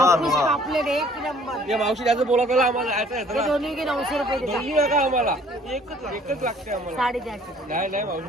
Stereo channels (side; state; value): both; normal; correlation 0.57